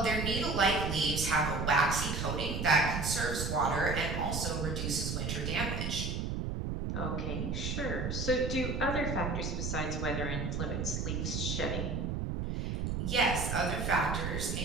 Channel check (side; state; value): right; noise; rumble, 2 dB below the sound